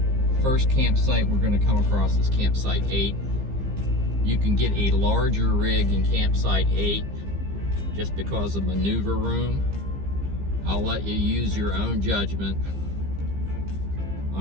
First campsite we're going to come across is campsite 8. You can get a larger rig in campsite 8 just because of maneuver room. I'll let you use your own judgment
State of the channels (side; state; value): left; late; 15 ms